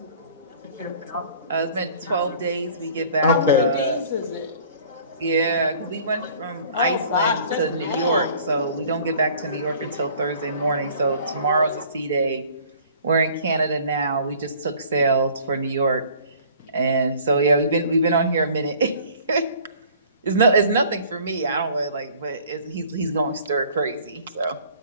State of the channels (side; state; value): both; inverted; correlation -0.52